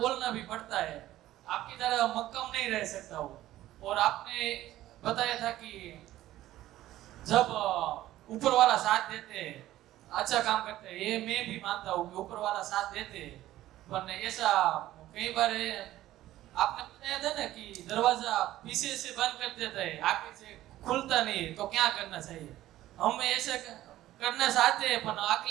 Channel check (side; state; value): left; quieter; 14.6 dB